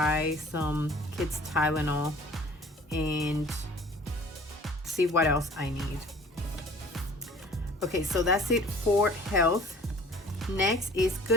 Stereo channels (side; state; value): both; normal; correlation 0.49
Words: some kids Tylenol and see what else I need. Okay, so that's it for health. Next is